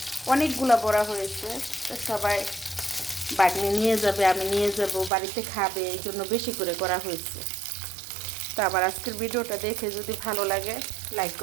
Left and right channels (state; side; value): drops out; left; at 5.1 s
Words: অনেকগুলা বড়া হয়েছে, তো সবাই বাগনি নিয়ে যাবে, আমি নিয়ে যাব, বাড়িতে খাবে, এই জন্য বেশি করে করা হয়েছে। তো আবার আজকের ভিডিওটা দেখে যদি ভালো লাগে লাইক